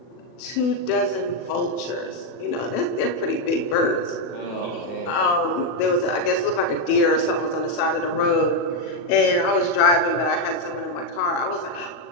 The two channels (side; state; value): right; late; 40 ms